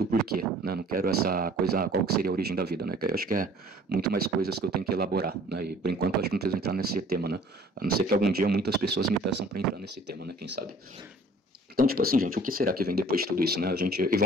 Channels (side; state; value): both; normal; correlation 0.53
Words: porquê, né? Não quero essa coisa, qual que seria a origem da vida, né? Que eu acho que é muito mais coisas que eu tenho que elaborar, né? E por enquanto eu acho que não preciso entrar nesse tema, né? A não ser que algum dia muitas pessoas me peçam para entrar nesse tema, né? Quem sabe? Então, tipo assim, gente, o que será que vem depois de tudo isso, né? E